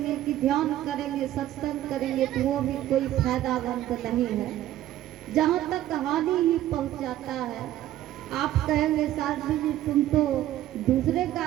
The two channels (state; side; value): quieter; left; 13.4 dB